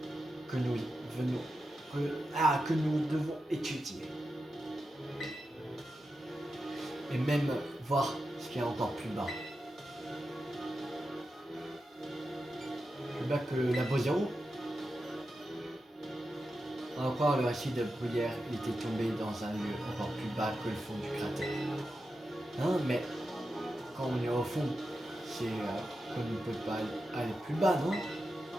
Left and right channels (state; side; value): normal; both; correlation 0.89